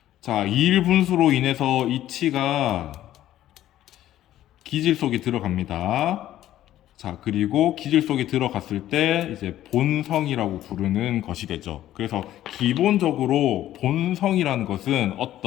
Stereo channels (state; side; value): quieter; right; 13.0 dB